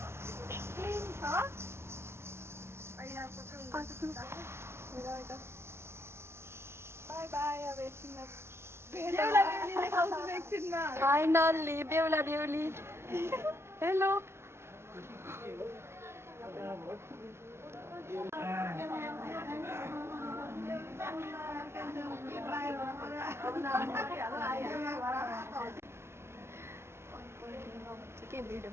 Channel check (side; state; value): left; late; 0.12 ms